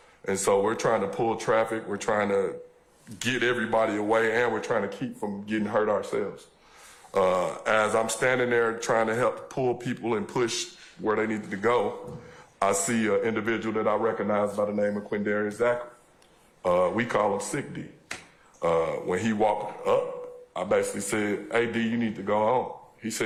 And so we're trying to pull traffic, we're trying to get everybody away, and we're trying to keep from getting hurt ourselves. As I'm standing there trying to help pull people and push where they needed to go, I see an individual that I recognize by the name of Quindarius Zachary. We call him Sick D. When he walked up, I basically said, hey, D, you need to go home. He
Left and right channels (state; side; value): identical; both; correlation 1.00